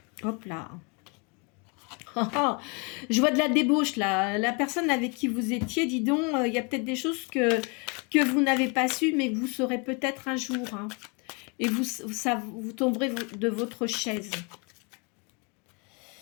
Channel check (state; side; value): quieter; right; 32.4 dB